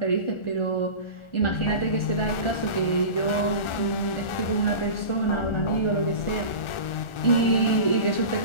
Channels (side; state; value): right; late; 1.4 ms